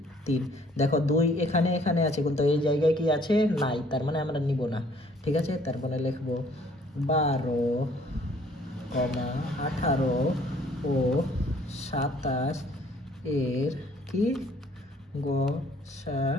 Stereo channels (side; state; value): both; normal; correlation 0.60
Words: 3। দেখো 2 এখানে এখানে আছে, কিন্তু এই জায়গায় কি আছে নাই, তার মানে আমরা নিব না, ঠিক আছে। তারপরে লিখবো 12, 18 ও 27 এর কি